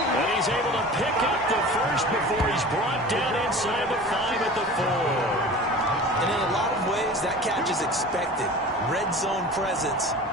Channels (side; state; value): both; normal; correlation 0.38